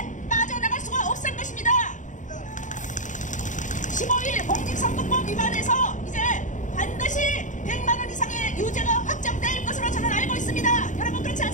빠져나갈 수가 없을 것입니다. 15일 공직선거법 위반에서 이제 반드시 100만 원 이상의 유죄가 확정될 것으로 저는 알고 있습니다. 여러분 그렇지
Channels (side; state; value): right; late; 0.36 ms